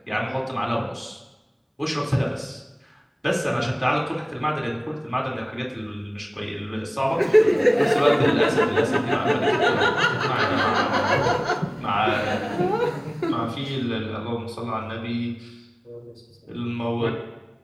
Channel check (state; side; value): identical; both; correlation 1.00